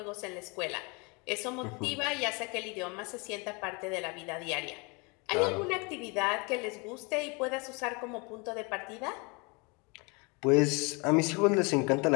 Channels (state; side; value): quieter; right; 29.8 dB